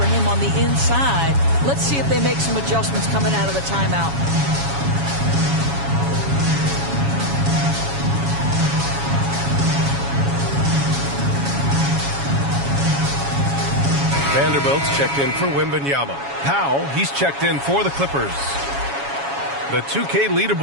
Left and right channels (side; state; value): left; late; 7.2 ms